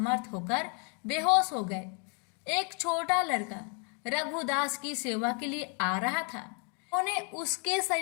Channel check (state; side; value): quieter; right; 38.0 dB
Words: होकर बेहोश हो गए। एक छोटा लड़का रघुदास की सेवा के लिए आ रहा था। उन्होंने उसके